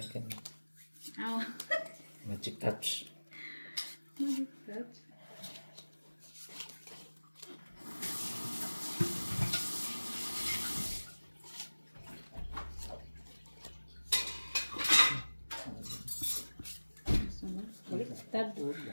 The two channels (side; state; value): both; inverted; correlation -1.00